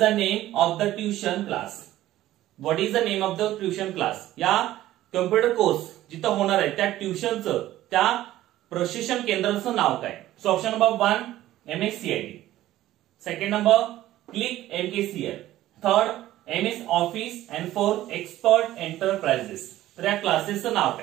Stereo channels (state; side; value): quieter; left; 14.5 dB